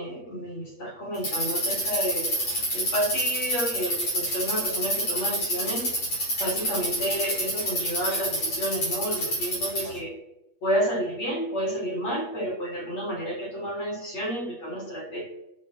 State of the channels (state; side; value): late; right; 8.4 ms